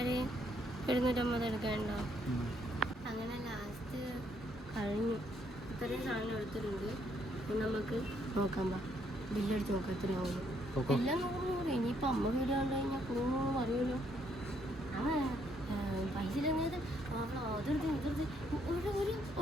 250 എടുക്കണ്ടോ? അങ്ങനെ ലാസ്റ്റ് കഴിഞ്ഞു. ഇത്രയും സാധനം എടുത്തിട്ടുണ്ട്. നമുക്ക് നോക്കാം. ബില്ലടിച്ച് നോക്കാം എത്രയാവും. എല്ലാം 100. ഇനിയിപ്പോൾ അമ്മ വീട് കണ്ടു കഴിഞ്ഞാൽ കൂടുന്നു അറിയുമല്ലോ. പൈസ ഇല്ലെന്നത് അതെടുത്ത് ഇതെടുത്ത്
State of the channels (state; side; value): normal; both; correlation 0.71